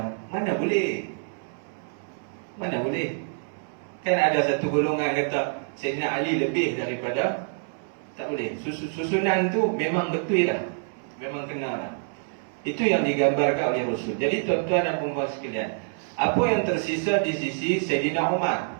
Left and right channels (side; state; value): left; silent; digital silence